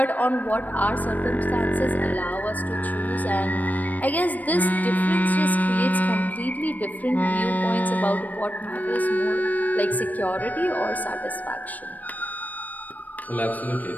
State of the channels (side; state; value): right; late; 0.080 ms